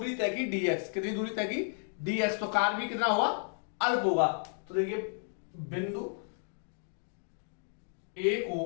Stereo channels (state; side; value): silent; right; digital silence